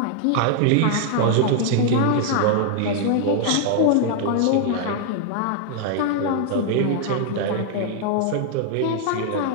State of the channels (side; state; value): both; different; correlation 0.00